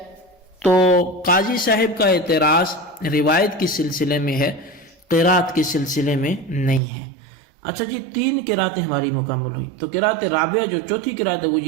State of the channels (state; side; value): drops out; left; at 6.8 s